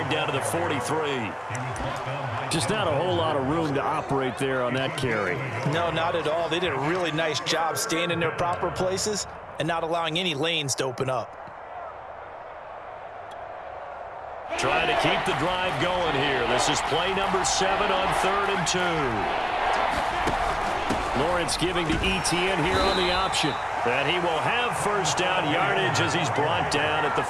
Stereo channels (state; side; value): identical; both; correlation 1.00